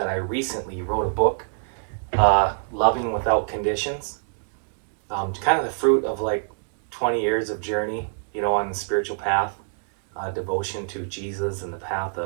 I recently wrote a book, Loving Without Conditions. Kind of the fruit of like 20 years of journey, on the spiritual path, devotion to Jesus and the path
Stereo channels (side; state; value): left; silent; digital silence